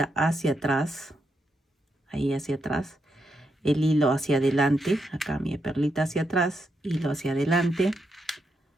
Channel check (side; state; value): both; normal; correlation 0.82